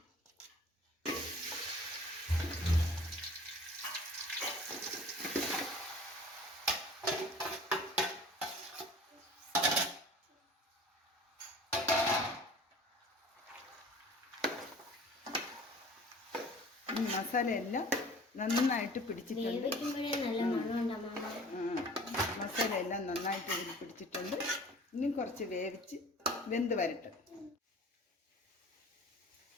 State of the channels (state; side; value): normal; both; correlation 0.46